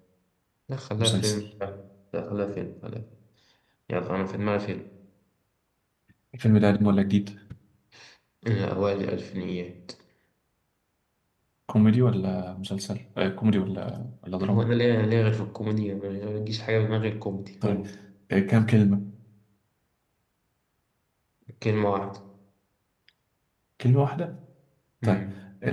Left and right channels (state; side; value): identical; both; correlation 1.00